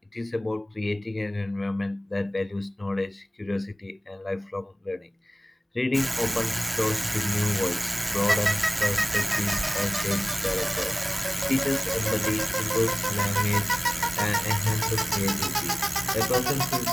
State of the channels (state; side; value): normal; both; correlation 0.98